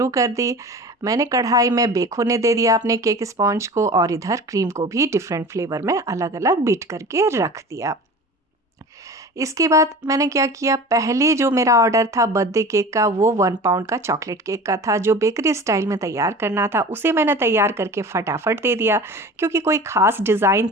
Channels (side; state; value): both; normal; correlation 0.38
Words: कर दी। मैंने कढ़ाई में बेक होने दे दिया अपने केक स्पॉन्ज को और इधर क्रीम को भी डिफरेंट फ्लेवर में अलग अलग बीट करके रख दिया। इसके बाद मैंने क्या किया, पहले जो मेरा ऑर्डर था बर्थडे केक का वो 1 पाउंड का चॉकलेट केक का था जो बेकरी स्टाइल में तैयार करना था। उसे मैंने तैयार करके फटाफट दे दिया क्योंकि कोई ख़ास डिज़ाइन